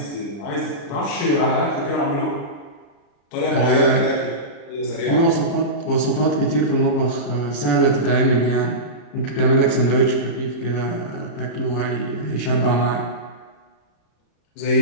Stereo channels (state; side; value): late; right; 34 ms